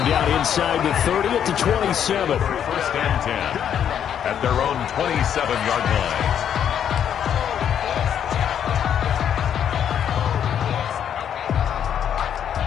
down inside the 30 at the 27. First and 10 at their own 27-yard line.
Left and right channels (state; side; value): quieter; right; 9.1 dB